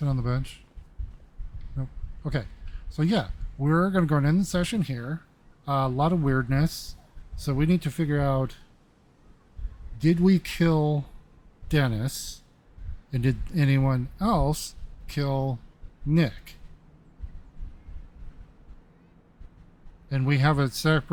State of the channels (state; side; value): identical; both; correlation 1.00